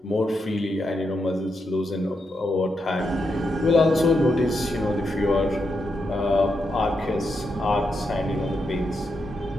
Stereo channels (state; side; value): normal; both; correlation 0.84